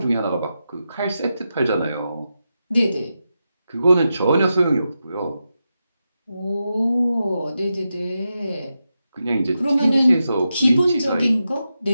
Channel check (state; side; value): inverted; both; correlation -0.89